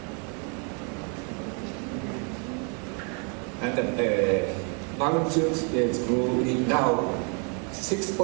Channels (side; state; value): left; quieter; 37.6 dB